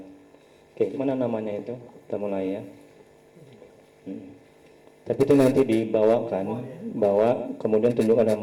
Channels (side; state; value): both; identical; correlation 1.00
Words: Oke, mana namanya itu? Kita mulai ya. Tapi itu nanti dibawakan, bawa kemudian tunjukkan